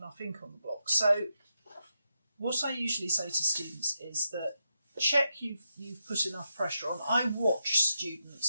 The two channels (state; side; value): inverted; both; correlation -0.85